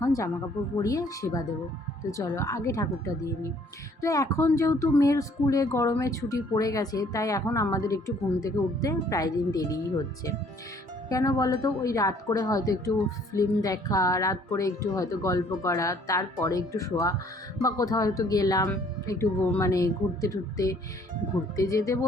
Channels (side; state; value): both; normal; correlation 0.60